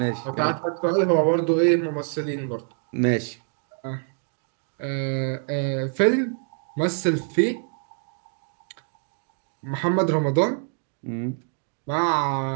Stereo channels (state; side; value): silent; left; 55 dB below the other